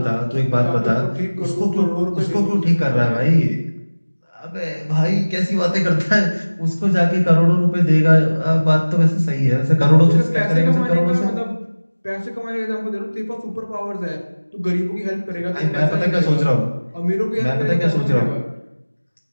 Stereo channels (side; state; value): both; inverted; correlation -1.00